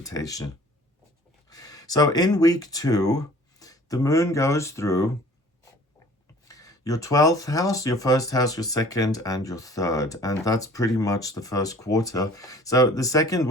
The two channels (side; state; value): both; normal; correlation 0.50